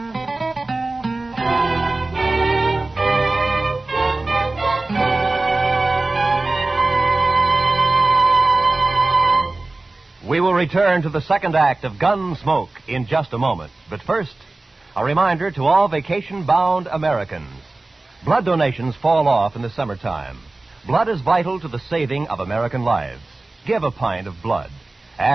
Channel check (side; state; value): left; quieter; 3.1 dB